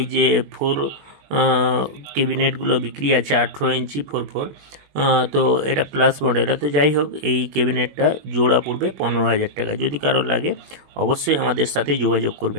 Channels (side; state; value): left; late; 21 ms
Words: যে ক্যাবিনেটগুলো বিক্রি আছে 18 ইঞ্চি 4/4। তো এটা প্লাস মডেল। তো যাই হোক, এই ক্যাবিনেটটা জোড়া পড়বে 15,000 টাকা। যদি কারোর লাগে অবশ্যই আমাদের সাথে যোগাযোগ